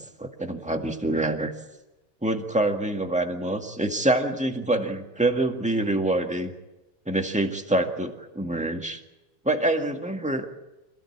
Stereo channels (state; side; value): normal; both; correlation 0.43